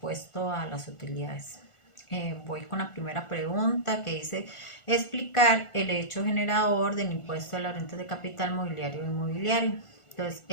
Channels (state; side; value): late; right; 1.4 ms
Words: a las utilidades. Voy con la primera pregunta, que dice explicar el hecho generador del impuesto a la renta de capital mobiliario e inmobiliario. Entonces,